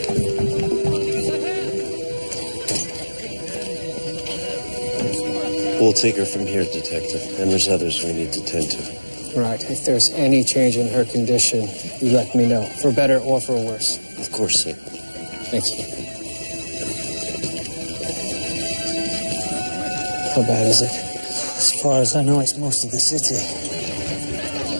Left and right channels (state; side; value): inverted; both; correlation -1.00